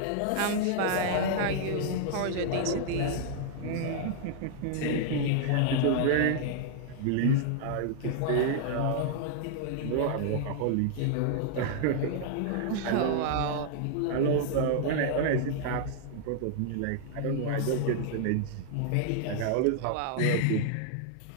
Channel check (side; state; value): both; different; correlation -0.01